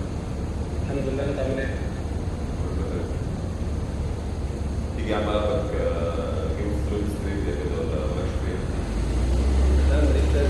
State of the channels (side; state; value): both; identical; correlation 1.00